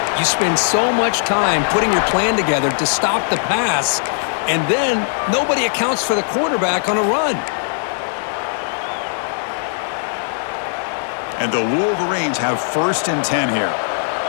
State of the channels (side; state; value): right; silent; digital silence